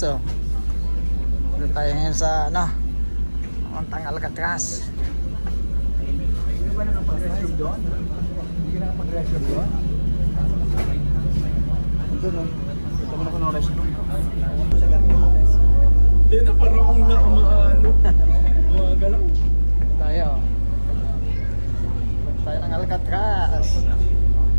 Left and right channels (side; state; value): both; inverted; correlation -1.00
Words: Dito tayo ngayon sa ano, Montang Alcatraz. Hindi ba nakapag-resume doon? Hindi ka nakapag-resume doon? Ito no. Ito mo na ko na-resume. Sa ganito mo guys. Hindi na parang kung nakamaano. Gumagalaw. Tayo. Tayo ng Alcatraz.